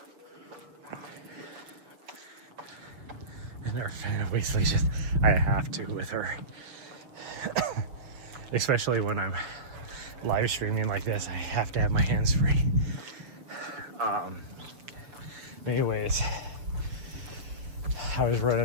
obviously just, I have to with her. Especially when I'm live streaming like this, I have to have my hands free. Anyways, I was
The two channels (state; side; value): late; left; 6.8 ms